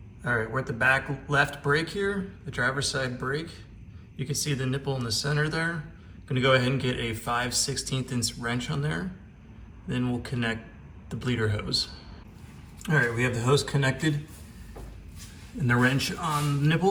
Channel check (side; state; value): both; identical; correlation 1.00